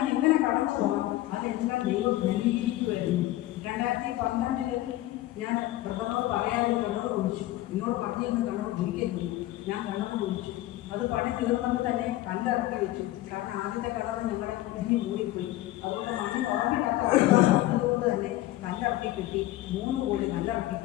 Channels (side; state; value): right; quieter; 16.0 dB